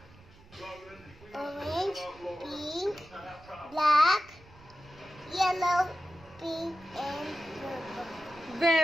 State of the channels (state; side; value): noise; right; rumble, 24 dB below the sound